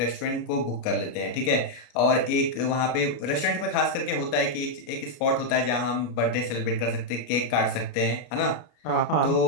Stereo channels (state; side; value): late; right; 33 ms